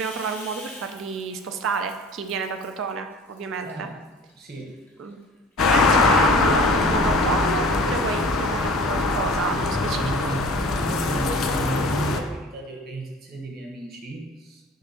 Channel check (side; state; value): both; normal; correlation 0.44